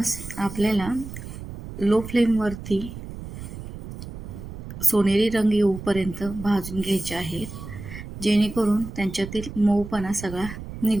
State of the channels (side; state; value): right; noise; rumble, 11 dB below the sound